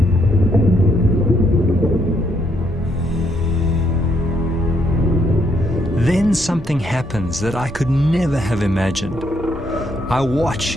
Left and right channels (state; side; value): normal; both; correlation 0.73